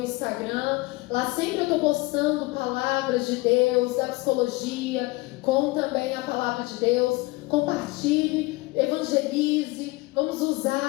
Lá sempre eu estou postando palavras de Deus, da psicologia, com também a palavra de Deus. Compartilhe, evangelize. Vamos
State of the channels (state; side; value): quieter; right; 22.5 dB